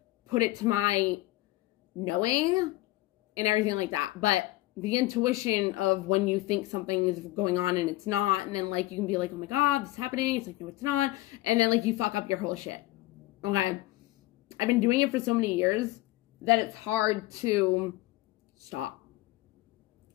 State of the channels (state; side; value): quieter; right; 18.2 dB